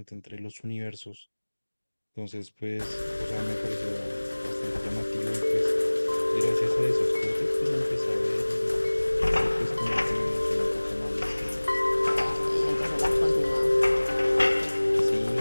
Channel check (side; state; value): both; inverted; correlation -1.00